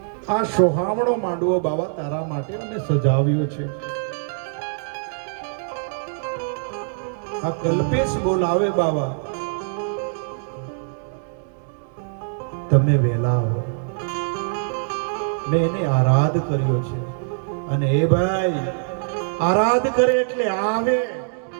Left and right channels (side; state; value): left; silent; digital silence